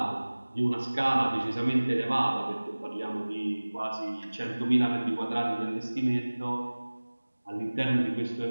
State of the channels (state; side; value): inverted; both; correlation -1.00